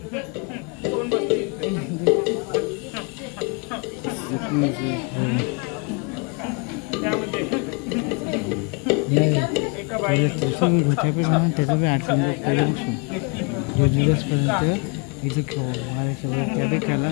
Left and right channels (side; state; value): right; quieter; 32.4 dB